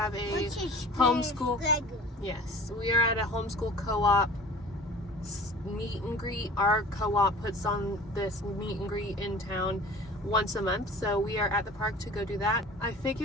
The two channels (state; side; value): normal; both; correlation 0.43